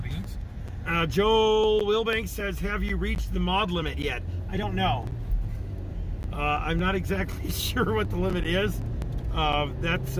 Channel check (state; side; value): identical; both; correlation 1.00